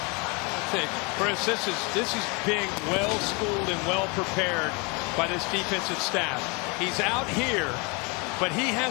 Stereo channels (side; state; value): right; quieter; 30.4 dB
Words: Chris, this is being well schooled and well prepared by this defensive staff. He's out here, but he